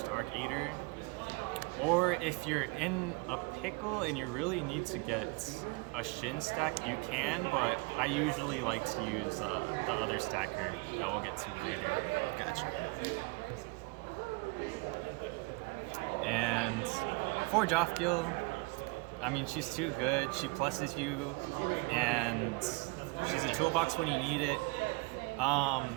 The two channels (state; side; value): quieter; left; 27.9 dB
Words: Arc Eater. Or if you're in a pickle and you really need to get a Shin stack, you can, but I usually like to use the other stacker that we'll get to later. Gotcha. And for Jofgil, I mean, she's too good. She pluses you, and she's a toolbox when you need it.